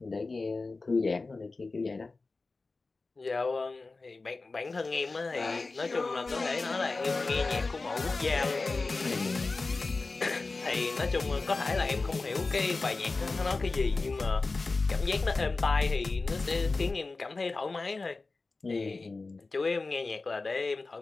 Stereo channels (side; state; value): right; quieter; 3.7 dB